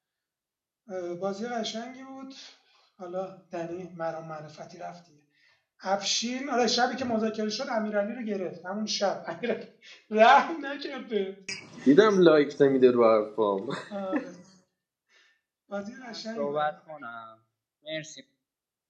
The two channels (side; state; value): both; identical; correlation 1.00